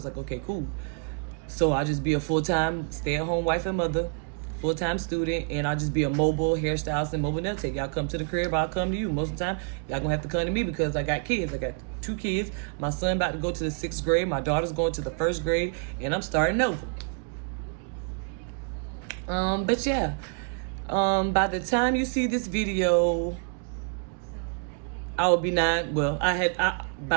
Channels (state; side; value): quieter; left; 39.2 dB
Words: like, okay, cool. So I'll just be a full-time stay-at-home wife and mother, full-time student, and I'll just be a mobile hairstylist and mobile nail tech. Y'all come to the crib, I'll come to you. Most of the time, y'all gonna have to come to me because I got kids. I got 2 kids. My son about to go to the 6th grade. My daughter's going to the 1st grade, and I'm starting over. But yeah, by the time you see this video, I will be 9. Well,